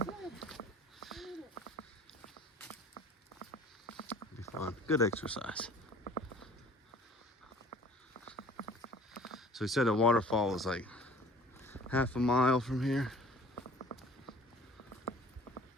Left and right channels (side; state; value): both; normal; correlation 0.49